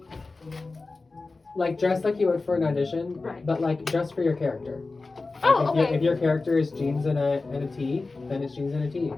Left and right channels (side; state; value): right; quieter; 3.6 dB